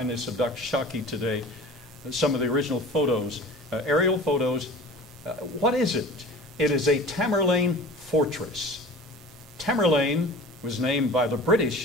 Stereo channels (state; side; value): normal; both; correlation 0.40